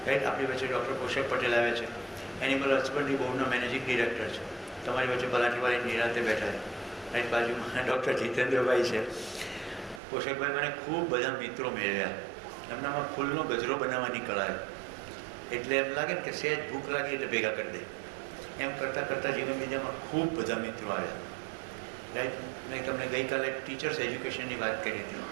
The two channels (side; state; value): left; drops out; at 10.0 s